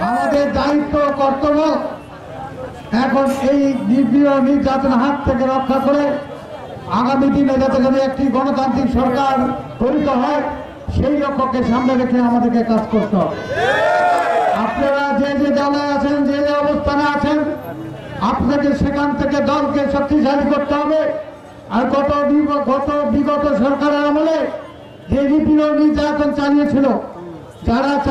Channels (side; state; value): both; identical; correlation 1.00